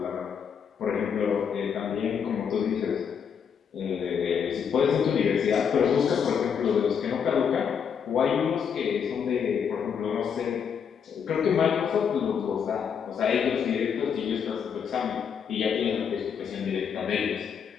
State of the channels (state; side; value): quieter; right; 7.2 dB